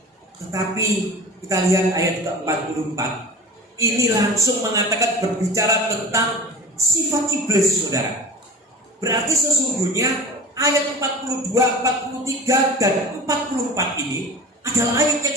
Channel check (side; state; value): both; normal; correlation 0.37